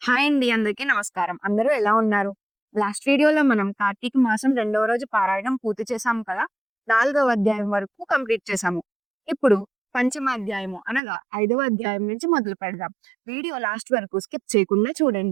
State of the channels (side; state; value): left; drops out; at 11.0 s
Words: Hi అండి. అందరికీ నమస్కారం. అందరూ ఎలా ఉన్నారు? లాస్ట్ వీడియోలో మనం కార్తీక మాసం రెండవ రోజు పారాయణం పూర్తి చేశాం కదా! నాలుగవ అధ్యాయం వరకు కంప్లీట్ చేశాము. ఇప్పుడు పంచమ అధ్యాయము అనగా ఐదవ అధ్యాయం నుంచి మొదలు పెడదాం. వీడియో లాస్ట్ వరకు స్కిప్ చేయకుండా